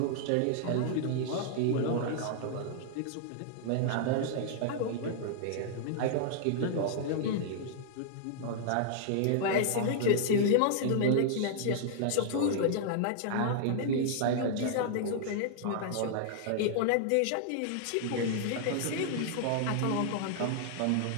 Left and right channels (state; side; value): different; both; correlation -0.01